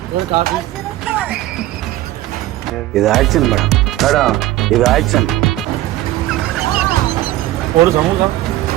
ஒரு காஃபி. இது ஆக்ஷன் மேடம், இது ஆக்ஷன். ஒரு சமோசா,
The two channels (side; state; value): left; quieter; 15.7 dB